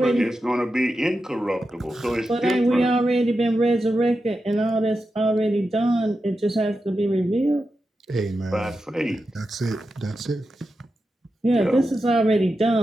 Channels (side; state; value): both; normal; correlation 0.90